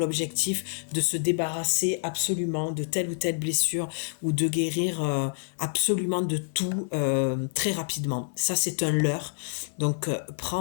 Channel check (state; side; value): silent; right; 60 dB below the other